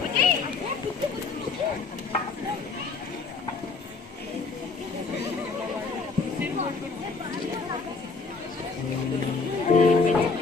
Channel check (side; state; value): right; quieter; 4.3 dB